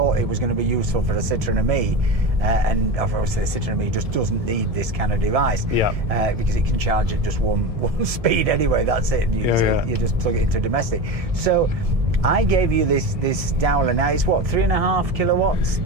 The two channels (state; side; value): late; left; 1.7 ms